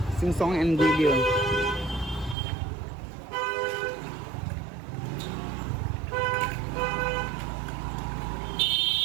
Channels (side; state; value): left; drops out; at 2.4 s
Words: sing song and video